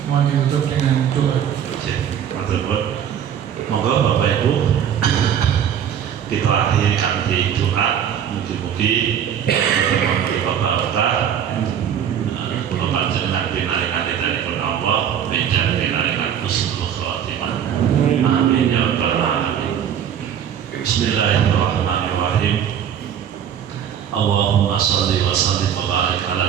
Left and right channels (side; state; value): left; quieter; 9.1 dB